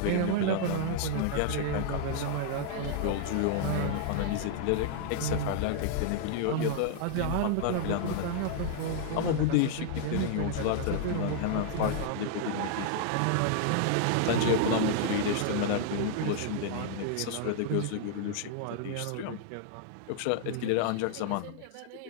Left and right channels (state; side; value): different; both; correlation -0.01